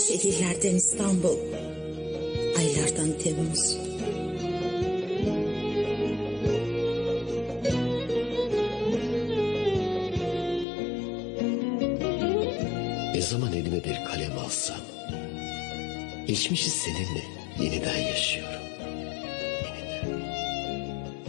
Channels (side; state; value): right; drops out; at 10.7 s